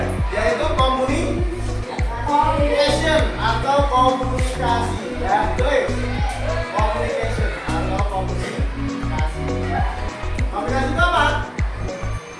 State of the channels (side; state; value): both; identical; correlation 1.00